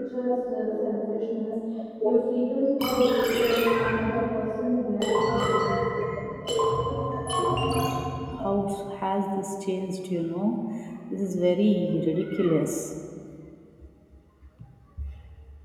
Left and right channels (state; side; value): identical; both; correlation 1.00